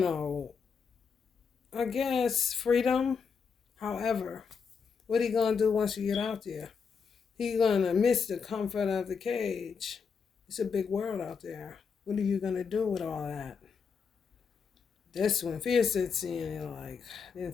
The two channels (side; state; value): right; quieter; 5.9 dB